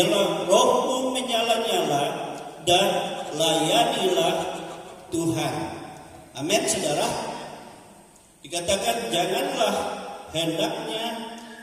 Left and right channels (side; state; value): both; identical; correlation 1.00